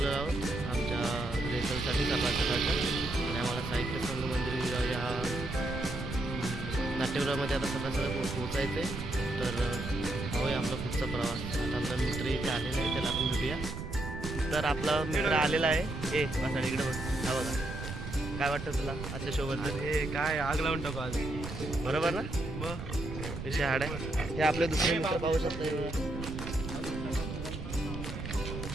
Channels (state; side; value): noise; right; rumble, 7 dB below the sound